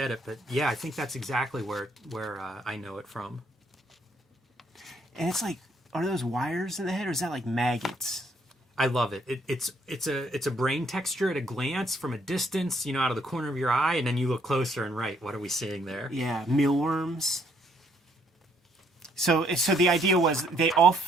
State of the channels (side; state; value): both; normal; correlation 0.68